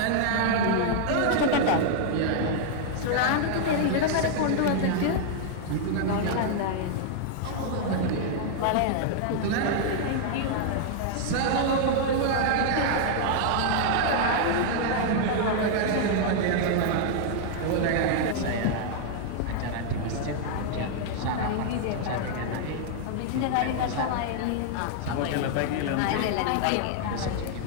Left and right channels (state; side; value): different; both; correlation -0.01